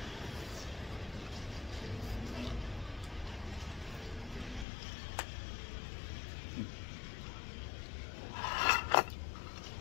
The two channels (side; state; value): right; drops out; at 4.7 s